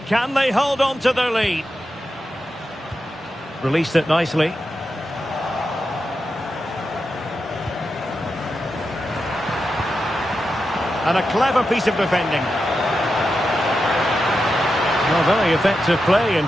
Can they hold on to their lead? Released it nicely. And a clever piece of defending. Well, very effective play in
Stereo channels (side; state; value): both; normal; correlation 0.89